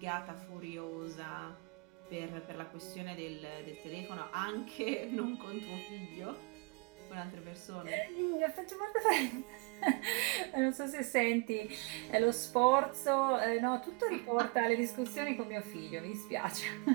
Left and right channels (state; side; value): quieter; left; 30.6 dB